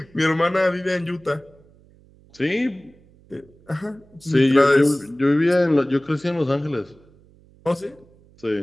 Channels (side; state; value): right; noise; hum, 28 dB below the sound